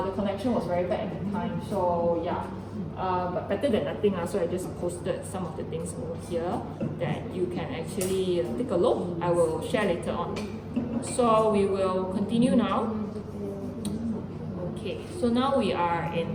connection was very bad at the time. So yeah, but better than nothing. So I just posted some of the things over here that you can actually take a look. I will share later on. So we will continue now. Okay, so now we are in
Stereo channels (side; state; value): both; identical; correlation 1.00